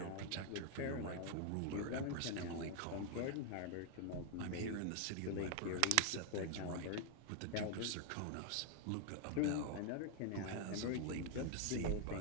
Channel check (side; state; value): both; different; correlation 0.00